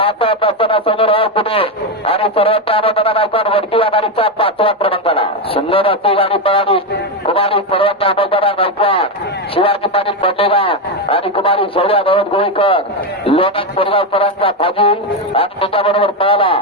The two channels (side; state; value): both; normal; correlation 0.09